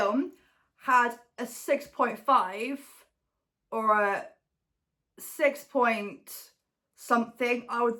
had a 6.5 or a 6 point something, I would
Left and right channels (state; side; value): identical; both; correlation 1.00